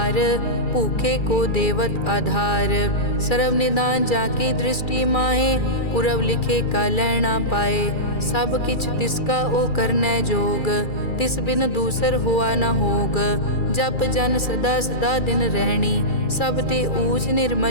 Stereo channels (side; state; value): right; late; 2.3 ms